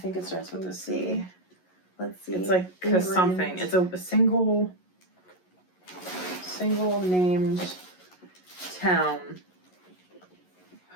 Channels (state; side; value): late; right; 11 ms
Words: it starts with a C. Let's see. It's like something. It's a single named town.